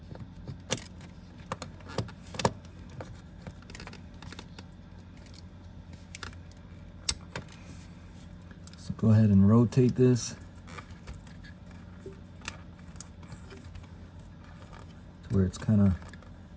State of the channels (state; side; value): identical; both; correlation 1.00